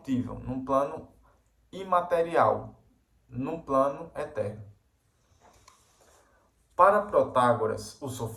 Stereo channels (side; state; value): both; identical; correlation 1.00